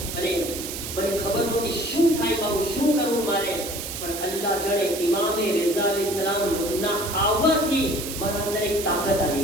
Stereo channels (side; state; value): right; noise; hiss, 7 dB below the sound